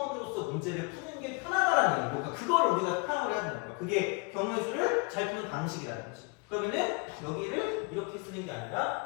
문제를 푸는 게 편하다라는 얘기고 그러니까 그걸 우리가 파악을 해야 된다는 거야. 그게 경우의 잘 푸는 방식이라는 거지. 그러면은 여기를 이렇게 쓰는 게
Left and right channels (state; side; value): quieter; right; 31.3 dB